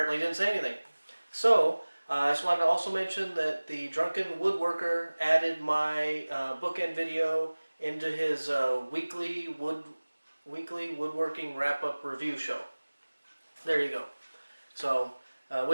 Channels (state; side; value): inverted; both; correlation -1.00